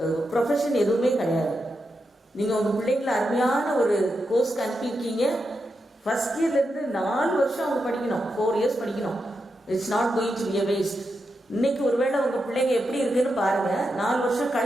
ப்ரொஃபஷன் எதுவுமே கிடையாது. நீங்கள் உங்கள் பிள்ளைங்களை அருமையான ஒரு கோர்ஸ்க்கு அனுப்பியிருக்கீங்க. ஃபர்ஸ்ட் இயர்லேருந்து 4 வருஷம் அவங்க படிக்கணும், 4 years படிக்கணும். It's not going to be a waste. இன்னைக்கு ஒருவேளை உங்கள் பிள்ளைங்க எப்படி இருக்குன்னு பாருங்கள், 4 வருஷம்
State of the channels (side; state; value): both; normal; correlation 0.86